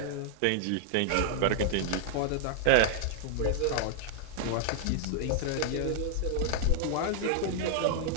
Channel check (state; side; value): different; both; correlation 0.00